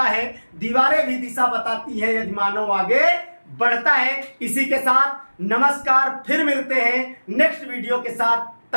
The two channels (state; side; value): inverted; both; correlation -1.00